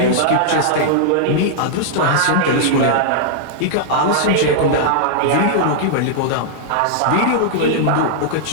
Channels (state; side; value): different; both; correlation -0.01